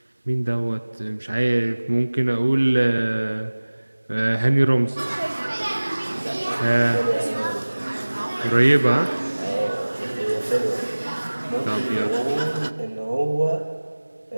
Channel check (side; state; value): both; inverted; correlation -1.00